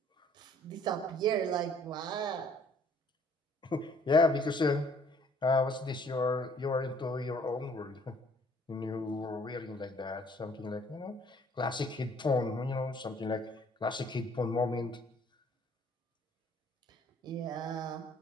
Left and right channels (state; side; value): normal; both; correlation 0.60